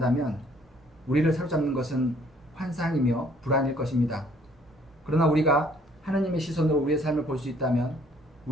우리를 사로잡는 것은 환상이며 불안일 것입니다. 그러나 우리가 하느님의 시선으로 우리의 삶을 볼 수 있다면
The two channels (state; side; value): normal; both; correlation 0.61